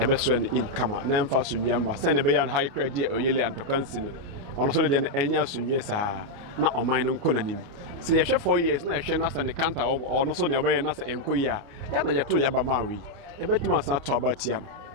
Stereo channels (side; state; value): left; late; 29 ms